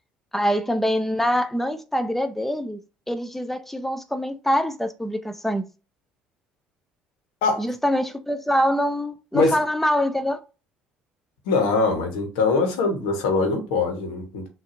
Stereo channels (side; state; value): both; normal; correlation 0.61